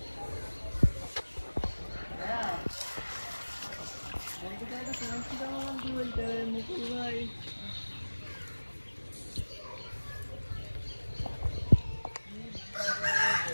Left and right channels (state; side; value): inverted; both; correlation -1.00